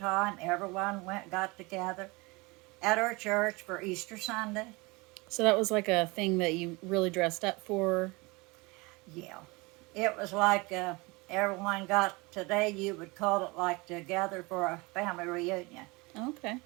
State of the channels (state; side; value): quieter; left; 25.4 dB